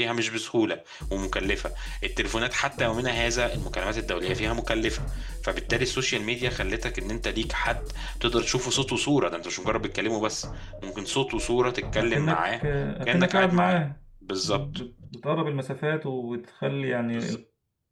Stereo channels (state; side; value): identical; both; correlation 1.00